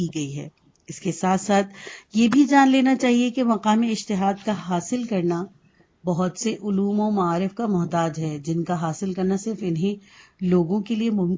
گئی ہے۔ اس کے ساتھ ساتھ یہ بھی جان لینا چاہیے کہ مقام اجتہاد کا حاصل کرنا بہت سے علوم و معارف کا محتاج ہے، جن کا حاصل کرنا صرف انہیں لوگوں کے لیے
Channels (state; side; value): identical; both; correlation 1.00